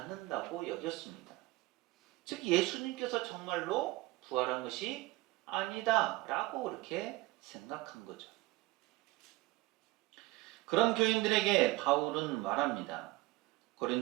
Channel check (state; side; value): quieter; left; 20.0 dB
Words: 여겼습니다. 즉 예수님께서 정말로 부활한 것이 아니다라고 그렇게 생각한 거죠. 그런 교인들에게 바울은 말합니다.